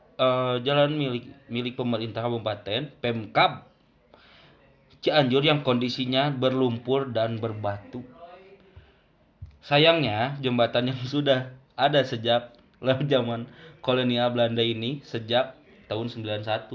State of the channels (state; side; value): identical; both; correlation 1.00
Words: milik pemerintah kabupaten Pemkab Cianjur yang kondisinya berlumpur dan berbatu. Sayangnya jembatan yang sudah ada sejak zaman kolonial Belanda ini sejak tahun